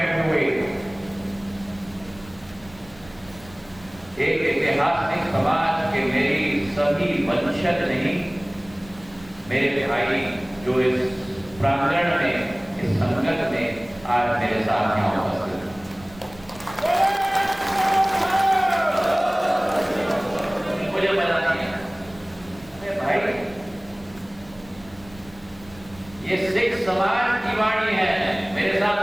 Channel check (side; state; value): right; noise; rumble, 22 dB below the sound